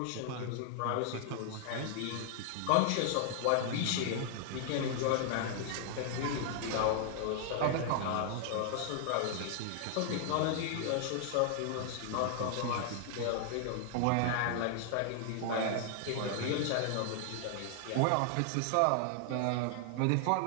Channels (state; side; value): different; both; correlation 0.00